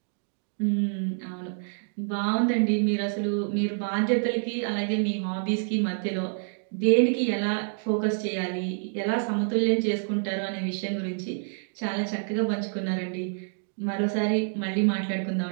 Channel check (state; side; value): silent; left; digital silence